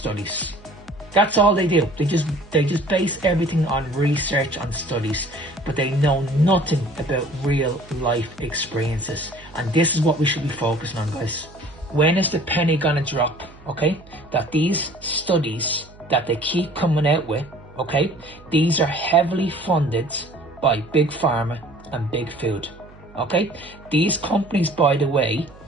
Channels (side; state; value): right; noise; hum, 23 dB below the sound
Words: That's all they do. They just base everything on research, on studies, but they know nothing about real life experiences. And this is what we should be focusing on, guys. When is the penny gonna drop? Okay, that these studies that they keep coming out with, okay, these are heavily funded by big pharma and big food. Okay, these companies, by the way,